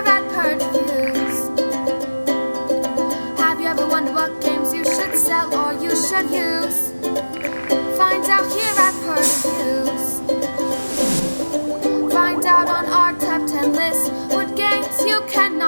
at Purge Reviews. Have you ever wondered what games you should sell or you should use? Find out here at Purge Reviews. Find out on our top 10 list what games you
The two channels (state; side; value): inverted; both; correlation -1.00